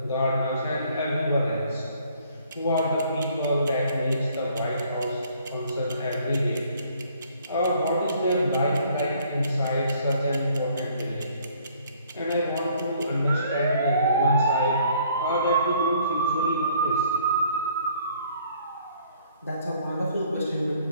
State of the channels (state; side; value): inverted; both; correlation -0.61